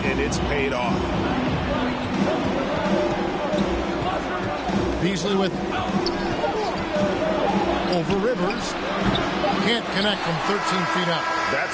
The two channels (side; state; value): both; identical; correlation 1.00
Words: it's paid off. Beasley with over Rivers. Can't connect from 13 feet up.